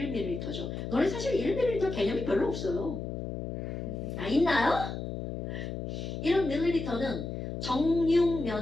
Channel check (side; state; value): left; noise; hum, 5 dB below the sound